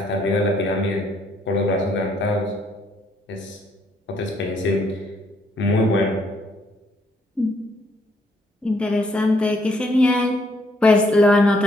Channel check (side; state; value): both; normal; correlation 0.70